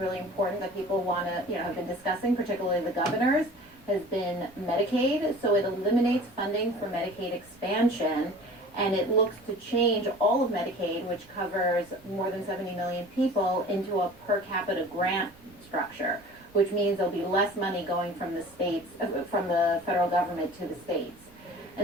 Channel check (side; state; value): right; noise; rumble, 28 dB below the sound